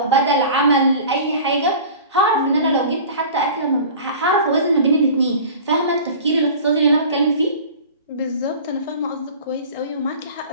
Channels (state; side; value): inverted; both; correlation -0.40